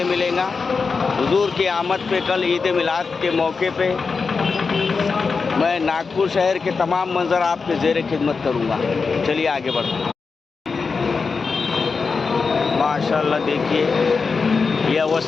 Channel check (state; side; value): quieter; right; 4.8 dB